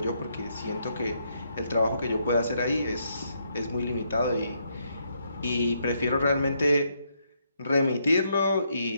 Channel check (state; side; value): inverted; both; correlation -0.76